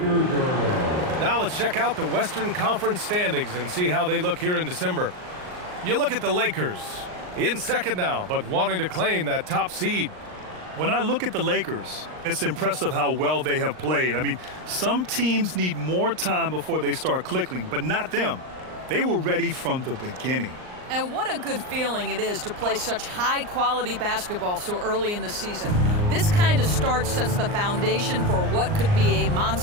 Now let's check out the Western Conference standings and see how they look here in December. You look at the Lakers, in second now, but wanting to claim that top seed. When I look at the Lakers, it's impressive how well they have played. I mean, some teams need more time before they start clicking, but not them. They were ready from the beginning. And what a good feeling it is to play such high-quality basketball so early in the season. This kind of start sets the foundation for what could be a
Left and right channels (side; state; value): left; late; 39 ms